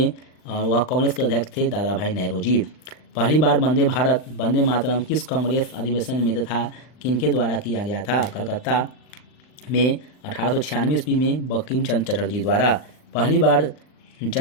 और वह कांग्रेस के अध्यक्ष थे दादा भाई नेहरू जी। पहली बार वंदे भारत वंदे मातरम किस कांग्रेस अधिवेशन में तथा किनके द्वारा किया गया था? कलकत्ता में 1896 ईस्वी में बंकिम चंद्र चटर्जी द्वारा। पहली बार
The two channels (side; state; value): right; late; 39 ms